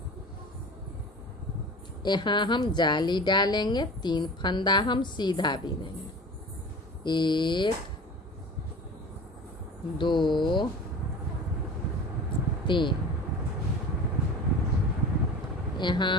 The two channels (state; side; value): normal; both; correlation 0.37